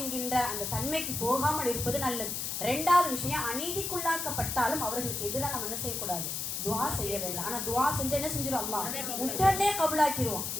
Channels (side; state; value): left; noise; hiss, 3 dB below the sound